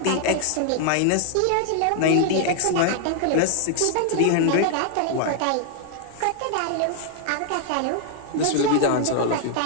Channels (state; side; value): different; both; correlation 0.00